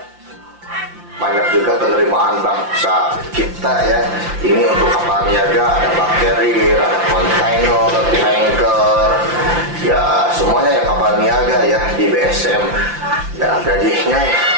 banyak juga penerimaan bangsa kita ya. Ini untuk kapal niaga, ada bakteri, ada kontainer, tanker, ya semuanya ya kapal niaga ya di BSM. Dan gajinya ya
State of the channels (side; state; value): left; late; 5.8 ms